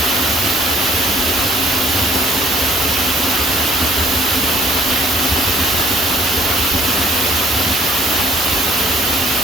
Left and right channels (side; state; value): both; normal; correlation 0.60